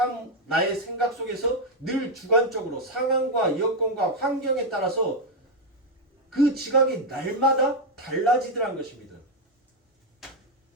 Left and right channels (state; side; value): normal; both; correlation 0.04